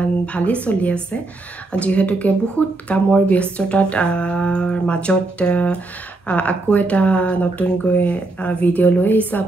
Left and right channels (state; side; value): quieter; left; 3.2 dB